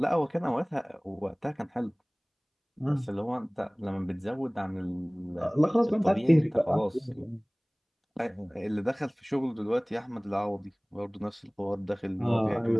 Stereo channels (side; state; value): both; identical; correlation 1.00